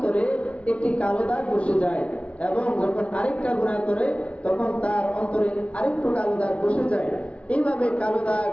একটি কালো দাগ বসে যায়, এবং যখন আরেকটা গুনাহ করে তখন তার অন্তরে আরেকটু কালো দাগ বসে যায়। এইভাবে কালো দাগ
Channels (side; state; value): right; late; 0.062 ms